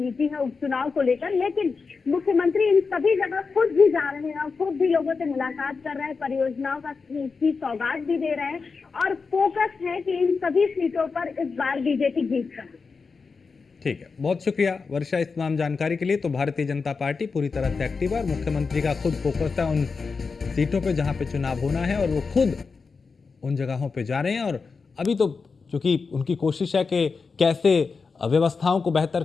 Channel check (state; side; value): quieter; right; 4.8 dB